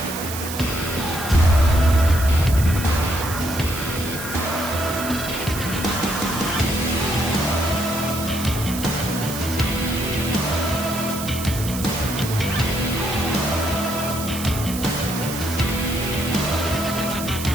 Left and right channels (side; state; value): right; noise; hiss, 8 dB below the sound